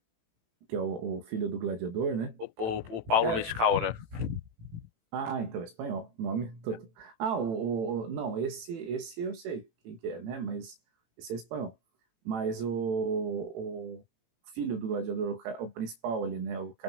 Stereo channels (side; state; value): left; late; 18 ms